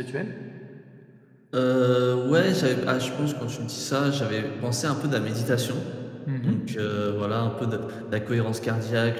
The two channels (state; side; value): identical; both; correlation 1.00